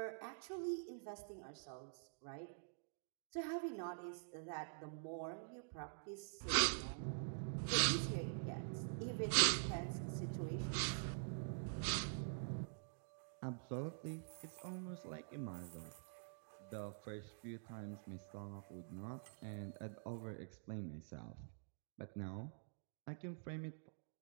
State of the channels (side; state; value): left; silent; digital silence